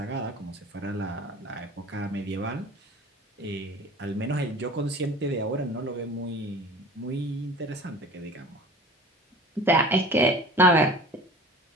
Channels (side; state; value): both; normal; correlation 0.41